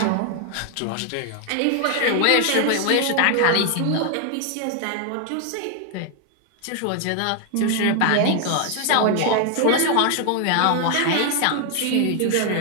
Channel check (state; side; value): different; both; correlation 0.00